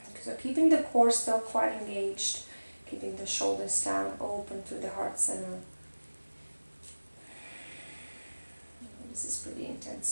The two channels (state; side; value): inverted; both; correlation -1.00